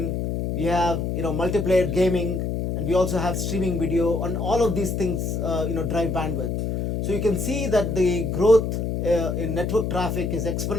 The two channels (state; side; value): noise; left; hum, 1 dB below the sound